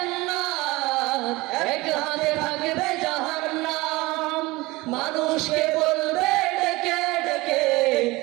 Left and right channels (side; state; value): left; quieter; 21.6 dB